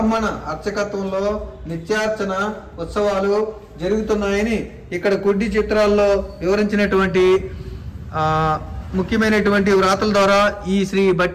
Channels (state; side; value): identical; both; correlation 1.00